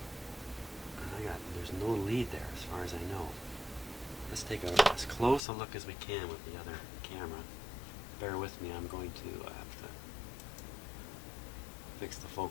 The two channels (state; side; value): drops out; right; at 5.4 s